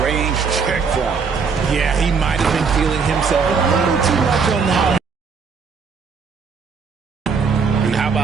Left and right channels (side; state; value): left; quieter; 5.5 dB